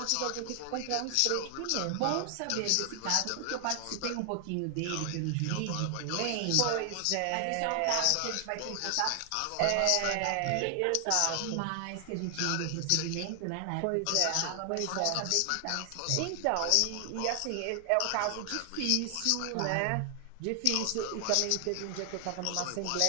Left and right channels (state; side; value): different; both; correlation 0.00